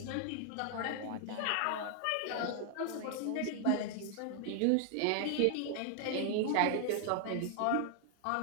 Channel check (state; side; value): different; both; correlation 0.00